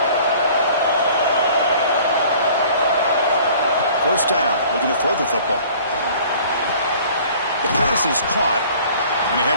1st down. Looking to throw the football. The pass is caught, and he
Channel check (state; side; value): inverted; both; correlation -0.50